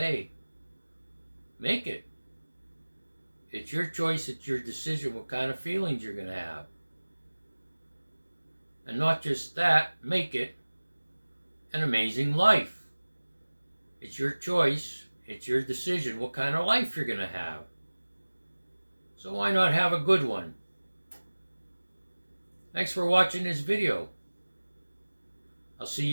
Make it. It's your choice, it's your decision what kind of feelings you're going to have. And not just that, make it an amazing life. It's your choice, it's your decision what kind of life you're going to have. So why not have a good one? Thanks for watching this video. I'll see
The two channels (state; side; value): inverted; both; correlation -1.00